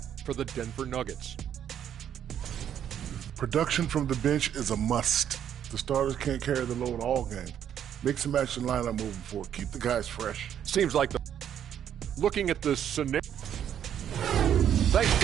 for the Denver Nuggets. Production from the bench is a must. The starters can't carry the load all game. Mix and match the lineup moving forward. Keep the guys fresh. Seems like the looking at the scenario. Thanks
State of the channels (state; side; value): quieter; left; 9.6 dB